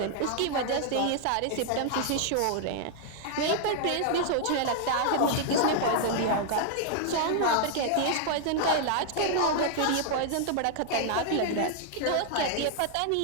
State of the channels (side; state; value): both; different; correlation 0.00